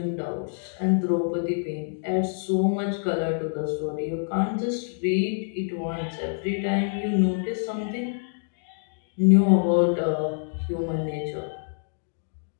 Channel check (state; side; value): silent; right; digital silence